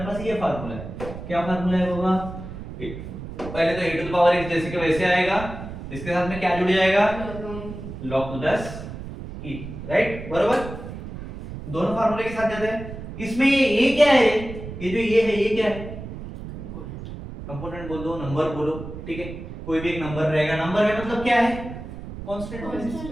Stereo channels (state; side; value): noise; right; rumble, 10 dB below the sound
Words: पास ये फार्मूला है। क्या फार्मूला है बाबा? पहले तो a to the power x जैसे कि वैसे आएगा, इसके साथ में क्या जुड़ जाएगा? log टू 10 e, राइट, बरोबर। दोनों फार्मूले के साथ जाते हैं। इसमें ये क्या है? ये जो ये है, ये क्या है? कंपोनेंट बोल दो, नंबर बोलो, ठीक है, कोई भी एक नंबर रहेगा। नंबर है मतलब क्या है? Constant,